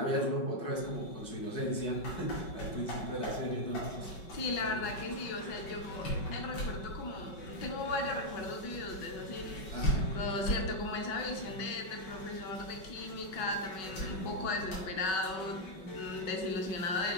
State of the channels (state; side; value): late; right; 5.3 ms